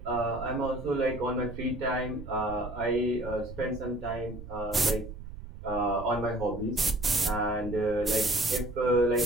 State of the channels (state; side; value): noise; right; rumble, 12 dB below the sound